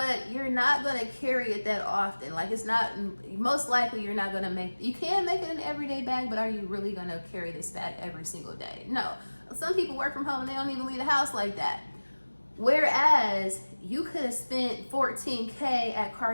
you're not going to carry it that often. Like it's not, most likely you're not going to you can make it an everyday bag, but are you really going to carry this bag every single day? No. Some people work from home and they don't even leave the house like that. Whereas you could have spent $14K at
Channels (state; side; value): inverted; both; correlation -1.00